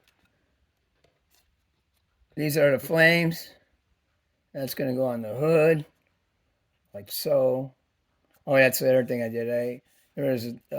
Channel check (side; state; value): both; identical; correlation 1.00